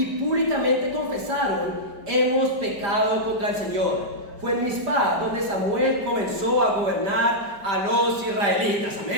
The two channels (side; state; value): left; late; 5.0 ms